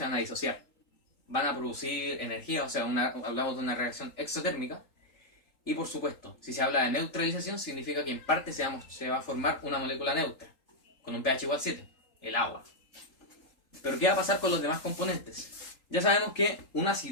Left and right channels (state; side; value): late; right; 3.8 ms